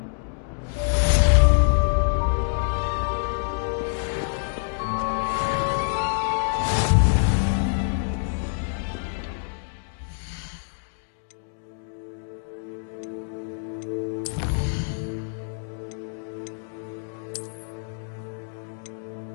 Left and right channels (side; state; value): right; silent; digital silence